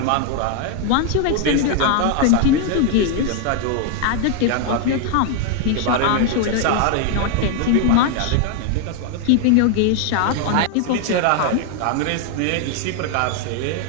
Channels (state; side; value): different; both; correlation 0.00